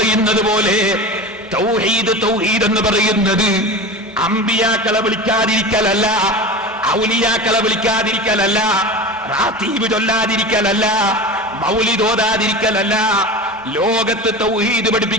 പോലെ തൗഹീദ്, തൗഹീദ് എന്ന് പറയുന്നത് അമ്പിയാക്കളെ വിളിക്കാതിരിക്കലല്ല, ഔലിയാക്കളെ വിളിക്കാതിരിക്കലല്ല, റാത്തീബ് ചൊല്ലാതിരിക്കലല്ല, മൗലിദ് ഓതാതിരിക്കലല്ല. ലോകത്ത് തൗഹീദ്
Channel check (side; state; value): both; normal; correlation 0.30